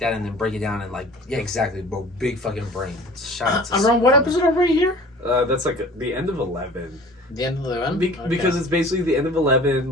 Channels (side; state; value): both; normal; correlation 0.45